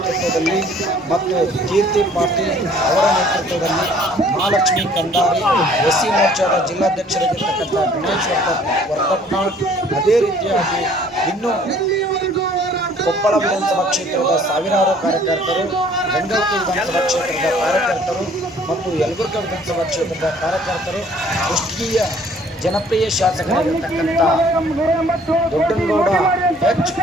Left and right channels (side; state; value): both; normal; correlation 0.56